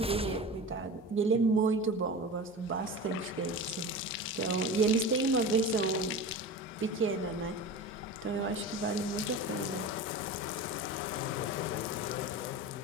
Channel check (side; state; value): both; normal; correlation 0.31